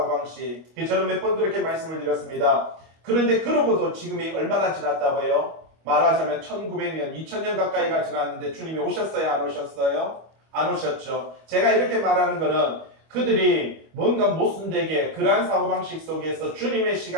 저는 몇 번 그렇게 말씀을 드렸습니다. 그런데 그러고도 지금이 얼마나 지났다고요? 말하자면 1900년, 2000년 가까이가 지났는데 주님이 오셨어요? 안 오셨어요? 안 오셨죠. 제가 이렇게 말하는 거는 그들이 뭔가 모순되게 그러한 사고방식 속에서 주님의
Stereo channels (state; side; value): late; left; 25 ms